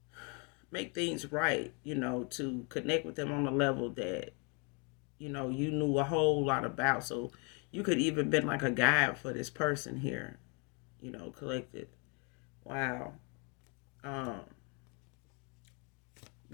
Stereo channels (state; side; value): quieter; right; 33.4 dB